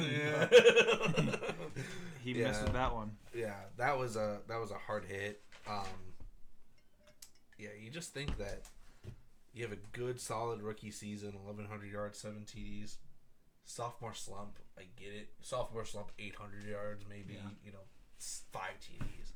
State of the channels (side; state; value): both; identical; correlation 1.00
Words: He missed with that one. Yeah, that was a hard hit. Yeah, you just think that you have a good, solid rookie season, 1,100 yards, 7 TDs. Sophomore slump, I get it. Sophomore slump, 800 yards, maybe, 5 TDs.